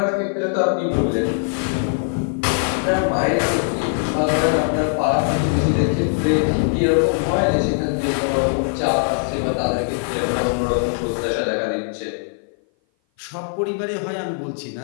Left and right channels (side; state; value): right; silent; 57 dB below the other